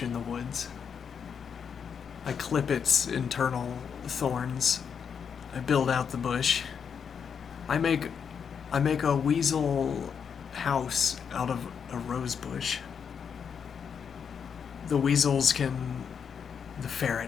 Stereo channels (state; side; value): quieter; right; 7.0 dB